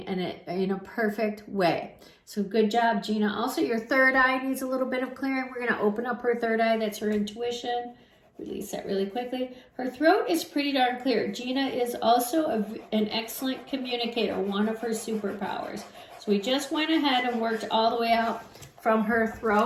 and in a perfect way. So good job, Gina. Also, your third eye needs a little bit of clearing. We're going to open up her third eye. That's her intuition. Release that really quickly. Her throat is pretty darn clear. Gina is also an excellent communicator, one of her superpowers. So we just went ahead and worked all the way out from her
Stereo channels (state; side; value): identical; both; correlation 1.00